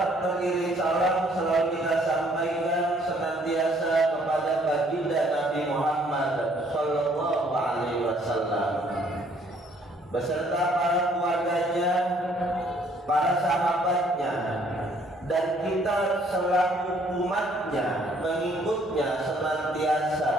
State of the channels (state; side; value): normal; both; correlation 0.63